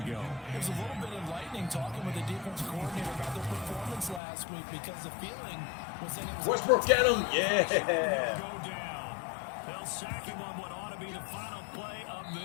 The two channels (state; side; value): drops out; right; at 4.2 s